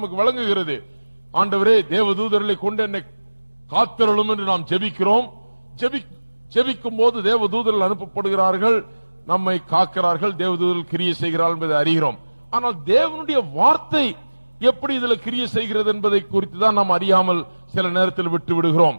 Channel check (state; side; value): inverted; both; correlation -1.00